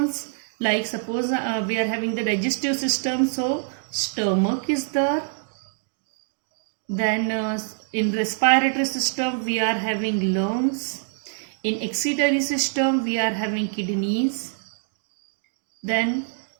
like suppose we are having the digestive system, so stomach is there. Then in respiratory system we are having lungs. In excretory system we are having kidneys. Then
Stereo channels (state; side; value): silent; left; 62 dB below the other